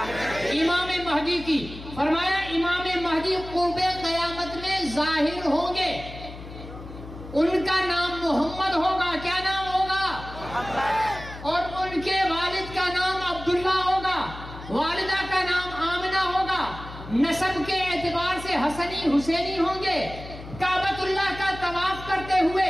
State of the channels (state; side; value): noise; left; hum, 13 dB below the sound